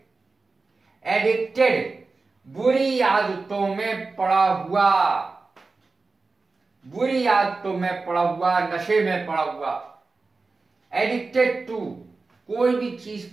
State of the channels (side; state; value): left; quieter; 3.9 dB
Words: एडिक्टेड बुरी आदतों में पड़ा हुआ, बुरी आदतों में पड़ा हुआ, नशे में पड़ा हुआ। एडिक्टेड टू, कोई भी चीज